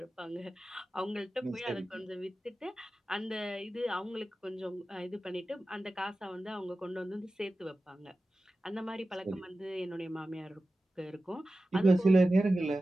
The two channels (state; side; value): normal; both; correlation 0.95